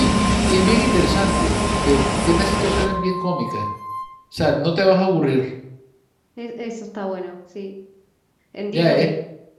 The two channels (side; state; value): both; identical; correlation 1.00